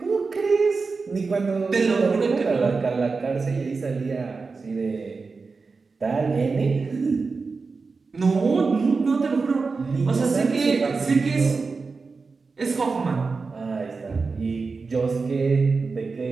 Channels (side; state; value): left; quieter; 4.4 dB